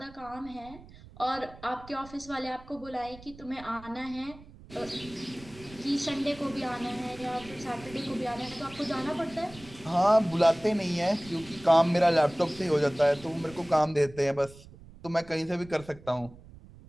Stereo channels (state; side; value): noise; right; rumble, 20 dB below the sound